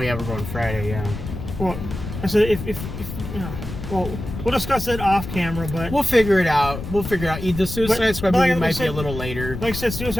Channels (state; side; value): noise; left; rumble, 8 dB below the sound